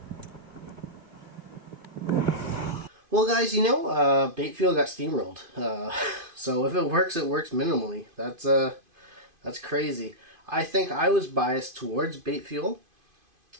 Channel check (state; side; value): late; left; 2.5 ms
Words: Well, guys, you know, bait fuel got steamrolled. So if it works minimally. That's crazy. I think I was biased towards bait fuel.